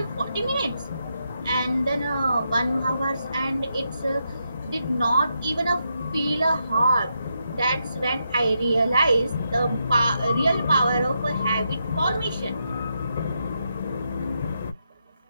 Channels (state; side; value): inverted; both; correlation -0.83